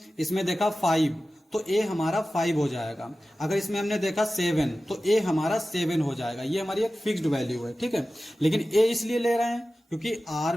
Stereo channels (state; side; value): normal; both; correlation 0.95